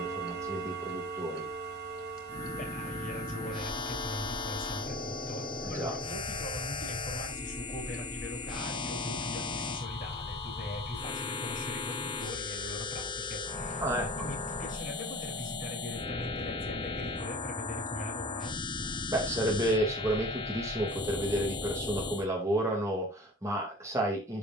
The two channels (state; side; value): normal; both; correlation 0.40